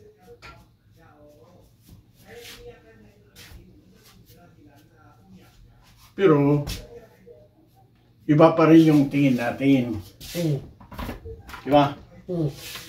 Pero, iba pa rin yung tingin natin. Di ba?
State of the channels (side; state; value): both; identical; correlation 1.00